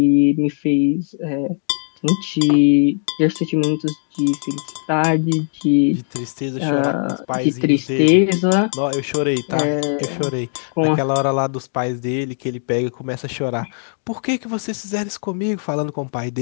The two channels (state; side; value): silent; right; digital silence